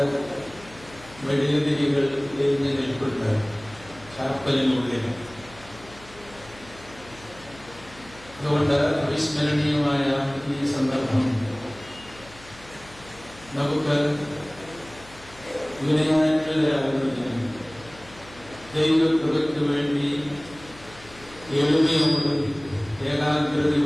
വെടിയുതിരികൾ എരിഞ്ഞു നിൽപ്പുണ്ട് ചാപ്പലിനുള്ളിൽ. അതുകൊണ്ട് അവിസ്മരണീയമായ ഈ സന്ദർഭം നമുക്ക് വിനയാനികളാകുന്നതിനും ദൈവകൃപയ്ക്ക് വേണ്ടി എളിമയോടും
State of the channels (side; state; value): left; noise; hum, 21 dB below the sound